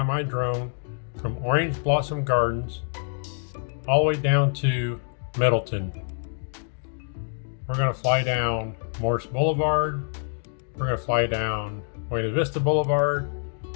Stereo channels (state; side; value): silent; right; digital silence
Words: my drone from Orange Blossom Gardens all the way down to Middleton. We're going to fly down Morse Boulevard. We're going to fly down Buena Vista Boulevard.